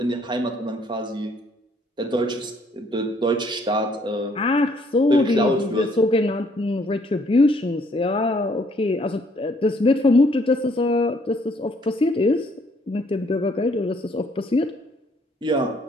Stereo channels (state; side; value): normal; both; correlation 0.65